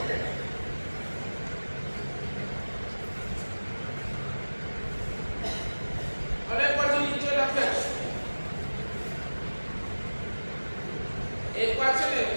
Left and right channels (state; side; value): inverted; both; correlation -1.00